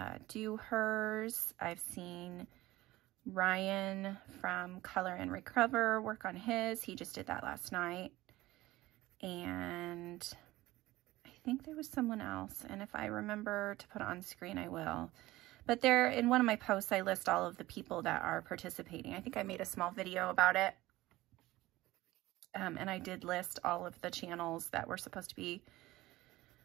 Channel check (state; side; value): quieter; left; 17.8 dB